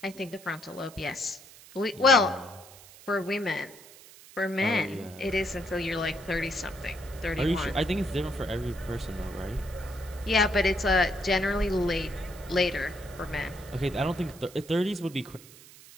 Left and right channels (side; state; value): right; noise; hiss, 20 dB below the sound